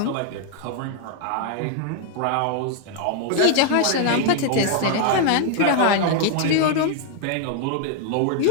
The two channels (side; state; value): both; different; correlation 0.00